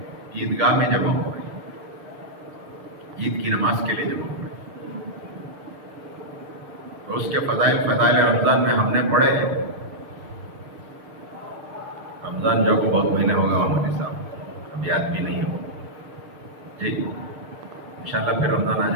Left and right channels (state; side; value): late; left; 6.5 ms